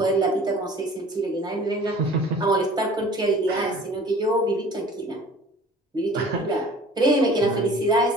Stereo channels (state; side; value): normal; both; correlation 0.47